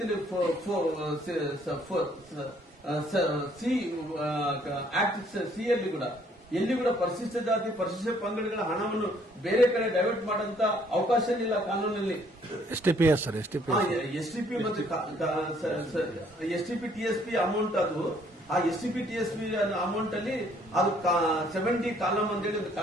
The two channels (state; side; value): normal; both; correlation 0.64